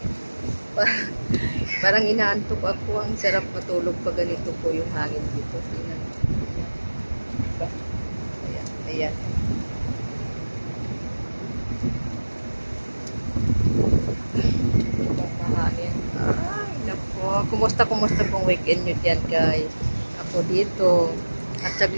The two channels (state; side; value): inverted; both; correlation -1.00